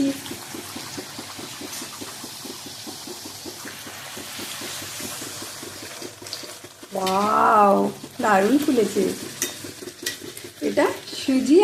ওয়াও, দারুণ ফুলেছে। এটা সুজি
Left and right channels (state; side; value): identical; both; correlation 1.00